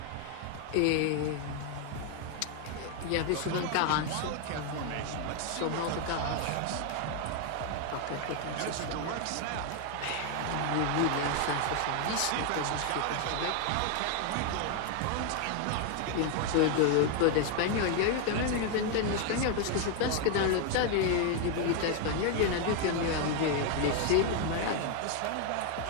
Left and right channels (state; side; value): different; both; correlation 0.01